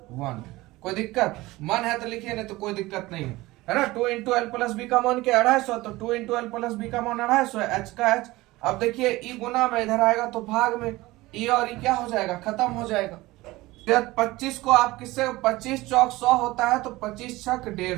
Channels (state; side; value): quieter; left; 19.5 dB